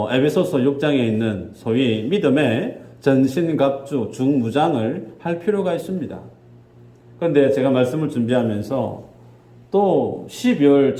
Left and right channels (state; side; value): identical; both; correlation 1.00